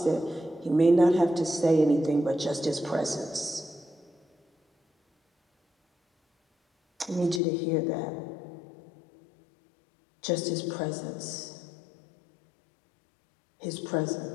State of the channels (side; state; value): right; drops out; at 7.4 s